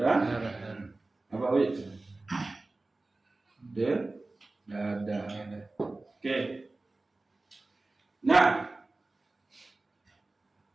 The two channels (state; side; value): quieter; left; 3.1 dB